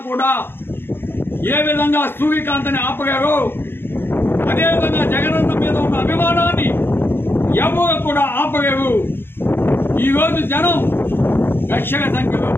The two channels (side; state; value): right; late; 0.10 ms